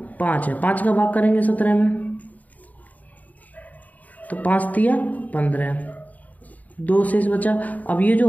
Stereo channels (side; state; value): right; late; 0.075 ms